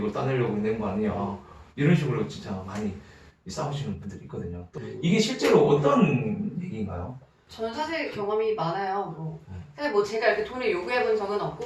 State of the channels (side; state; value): both; identical; correlation 1.00